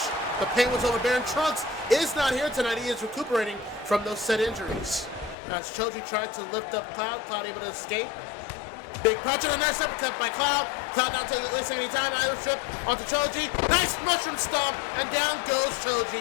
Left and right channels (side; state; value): right; drops out; at 5.4 s